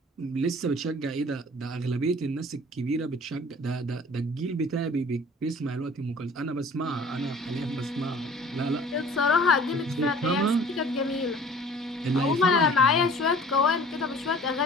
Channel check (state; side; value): normal; both; correlation 0.49